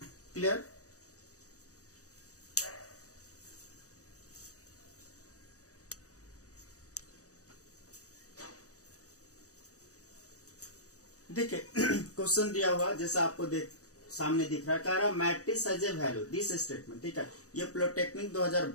clear? देखिए क्वेश्चन दिया हुआ जैसा आपको सामने दिख रहा है, कह रहा matrix has a value this statement. ठीक है, ये पॉलिटेक्निक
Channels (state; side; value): late; right; 0.66 ms